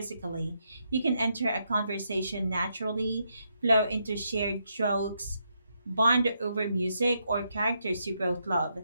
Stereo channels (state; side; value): inverted; both; correlation -0.80